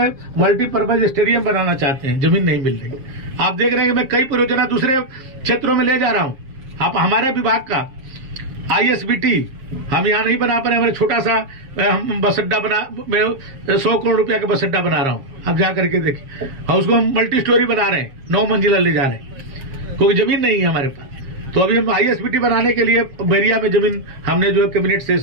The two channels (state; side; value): late; left; 7.4 ms